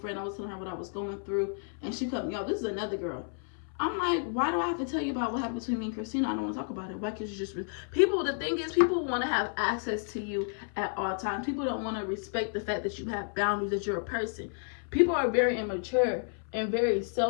I was telling her what I was going through. And she cut me off. This is another girl. I'm like, why do I have to tell you about what happened between me and Christina? I don't want to talk about it. Why can't you just... People, the thing is, people want to have access to you at all times. People don't want to respect the fact that you have boundaries, that you're a person. People are very immature and very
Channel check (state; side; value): silent; right; 57 dB below the other